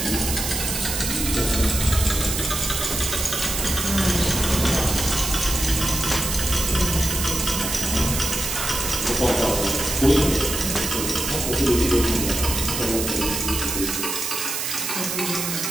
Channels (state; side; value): noise; right; hiss, 2 dB below the sound